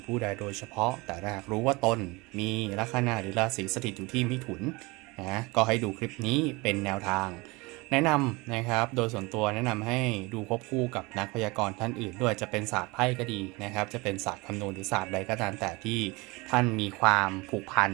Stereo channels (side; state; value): left; quieter; 24.6 dB